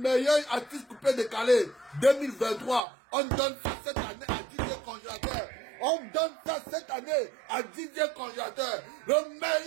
artiste coupé décalé 2023. On donne ça cette année à Didier Congélateur. On donne ça cette année à Didier Congélateur. Le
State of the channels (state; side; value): drops out; left; at 2.8 s